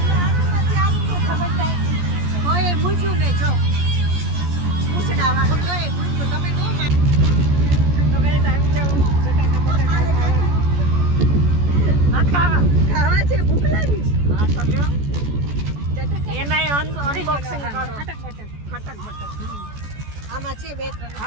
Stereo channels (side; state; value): left; late; 14 ms